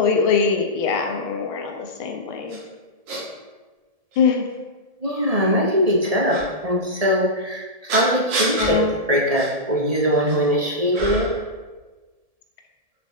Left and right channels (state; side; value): late; left; 1.7 ms